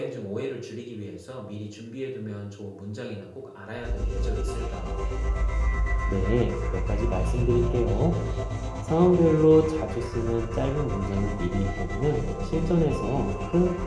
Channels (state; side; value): identical; both; correlation 1.00